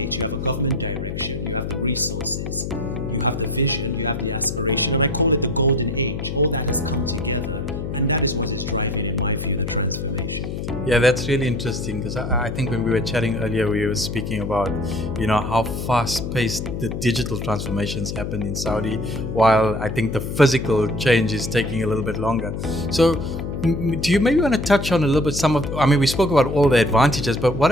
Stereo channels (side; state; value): left; noise; hum, 5 dB below the sound